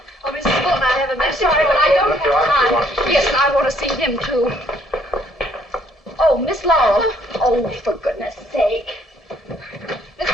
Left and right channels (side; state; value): both; normal; correlation 0.65